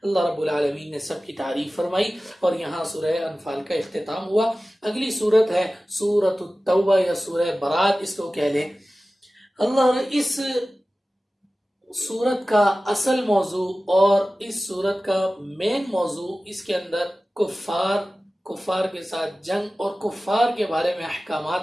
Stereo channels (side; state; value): both; normal; correlation 0.96